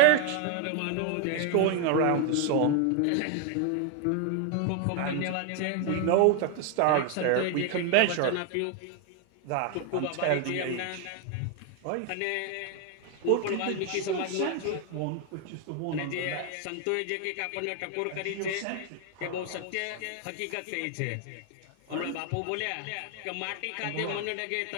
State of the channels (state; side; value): different; both; correlation 0.00